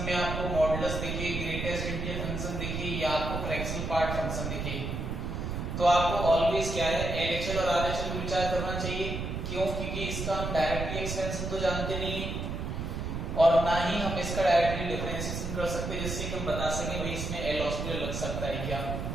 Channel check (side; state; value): right; noise; rumble, 4 dB below the sound